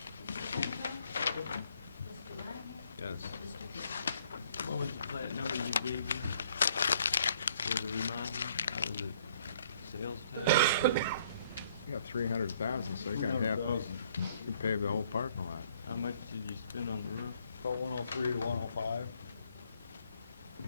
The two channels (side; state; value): both; inverted; correlation -0.64